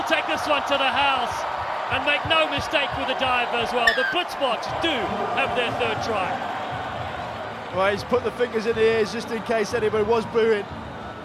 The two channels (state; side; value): identical; both; correlation 1.00